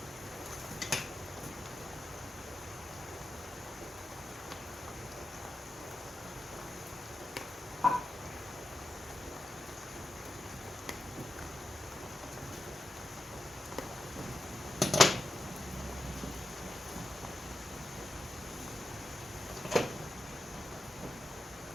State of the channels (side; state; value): both; normal; correlation 0.90